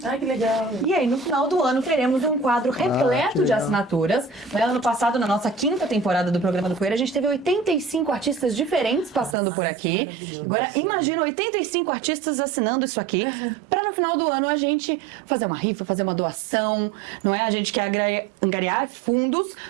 Ai, que legal. E aí, no final do ano, teremos um quadro repleto de assinaturas. No ano passado, na nossa 5ª temporada do programa do Foyer, a gente teve 85 artistas diferentes passando por aqui. Agora, imagina 85 artistas assinando isso aqui, para no final do ano a gente fazer uma rifa, fazer uma doação, não é? A gente quer angariar fundos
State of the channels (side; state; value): left; drops out; at 9.3 s